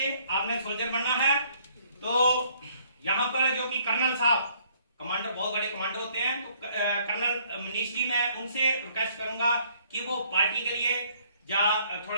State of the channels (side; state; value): both; inverted; correlation -0.62